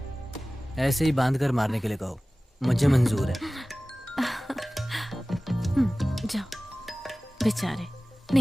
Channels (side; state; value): both; normal; correlation 0.98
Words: ऐसे ही बांध कर मारने के लिए कहो, मुझे मंजूर है। जाओ। बेचारे